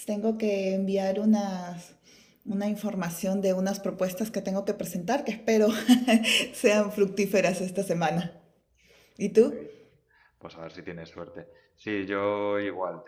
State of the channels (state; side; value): identical; both; correlation 1.00